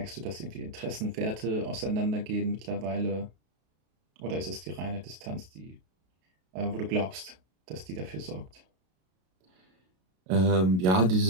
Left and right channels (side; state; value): left; late; 32 ms